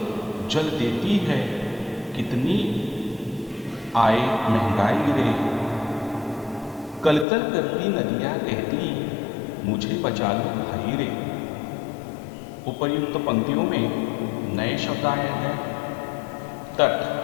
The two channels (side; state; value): right; drops out; at 7.2 s